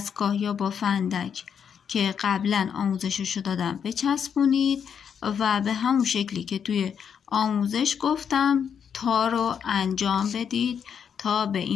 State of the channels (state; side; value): quieter; right; 7.5 dB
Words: یا با فندک که قبلا آموزششو دادم بچسبونید و به همون شکلی که توی آموزش گفتم تا رو انجام بدید تا به